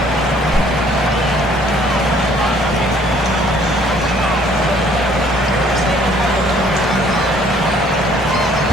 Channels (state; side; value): normal; both; correlation 0.60